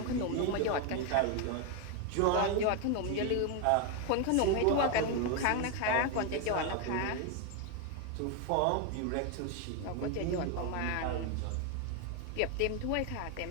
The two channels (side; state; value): both; different; correlation 0.01